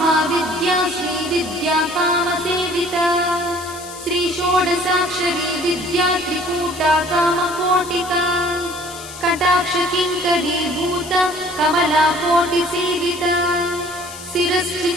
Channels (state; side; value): noise; left; hiss, 14 dB below the sound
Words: श्रीविद्या कामसेविता श्रीषोडशाक्षरी विद्या त्रिकूटा कामकोटिका कटाक्षकिङ्करीभूता कमलाकोटिसेविता